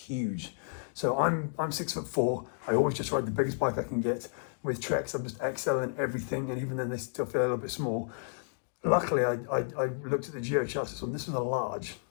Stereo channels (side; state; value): right; silent; digital silence